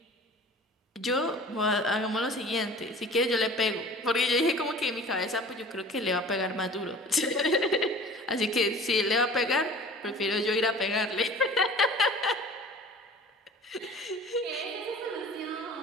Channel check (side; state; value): both; normal; correlation 0.43